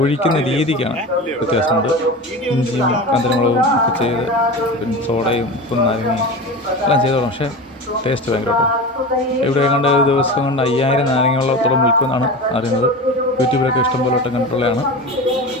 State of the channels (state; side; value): normal; both; correlation 0.29